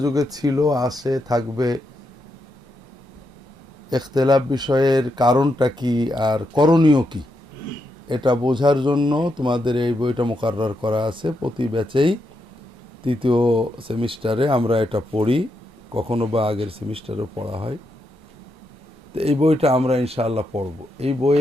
যুগে ছিল, আছে, থাকবে। ইখতিলাফ বিষয়ের কারণটা কি আর করণীয় কি, এটা বোঝার জন্য তোমাদের এই বইটা মুকাররার করা আছে। প্রতি ব্যাচেই তৃতীয় সেমিস্টারে আমরা এটা পড়ি, কখনো বা আগের সেমিস্টারেও পড়া হয়। তো এই বইটা আমরা ইনশাআল্লাহ পড়ব। এই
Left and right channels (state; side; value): normal; both; correlation 0.82